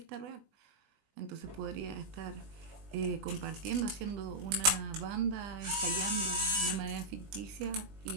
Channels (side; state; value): left; late; 20 ms